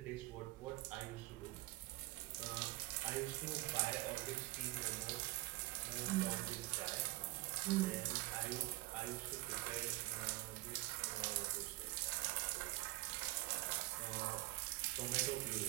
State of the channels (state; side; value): quieter; left; 20.6 dB